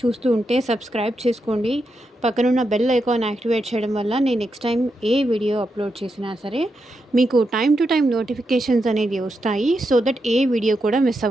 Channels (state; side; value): normal; both; correlation 0.85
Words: చూస్తూ ఉంటే సబ్స్క్రైబ్ చేసుకోండి. పక్కనున్న బెల్ ఐకాన్ యాక్టివేట్ చేయడం వల్ల నేను నెక్స్ట్ టైం ఏ వీడియో అప్లోడ్ చేసినా సరే మీకు టైం టు టైం నోటిఫికేషన్స్ అనేది వస్తాయి. సో దట్ ఏ వీడియో కూడా మిస్